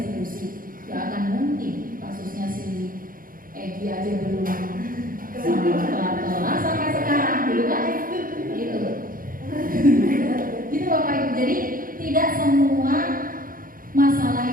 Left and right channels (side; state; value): left; late; 0.41 ms